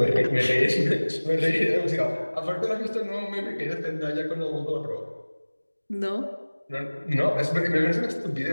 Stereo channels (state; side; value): inverted; both; correlation -1.00